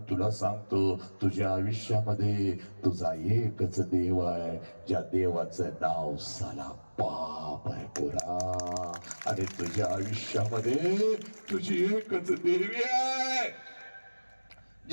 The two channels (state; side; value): inverted; both; correlation -1.00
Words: तुला सांगतो, तुझ्या आयुष्यामध्ये तुझा एकच देव आहे, ज्या देवाचं नाव साला बाप आहे पोरा. आणि तुझ्या आयुष्यामध्ये तुझी एकच देवी आहे,